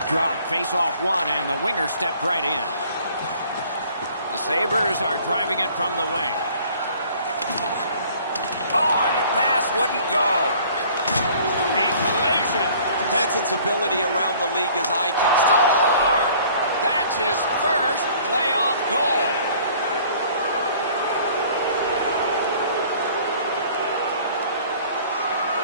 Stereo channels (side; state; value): both; inverted; correlation -0.53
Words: drop, face off one, and the winger stepped right in. The Sabres are driving it from the wing. Oh, and the pass wouldn't go. A collision. Hansen's ability around the league is eye-catching. Score! That's his first playoff goal.